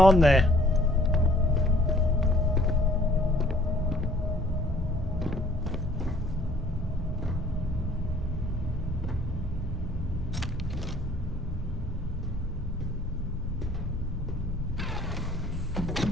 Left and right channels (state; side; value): normal; both; correlation 0.58